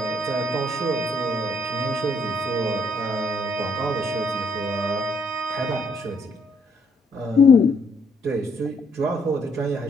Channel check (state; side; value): normal; both; correlation 0.69